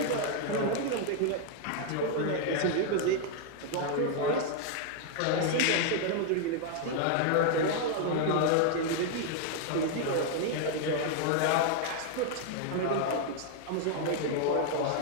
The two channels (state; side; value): different; both; correlation 0.00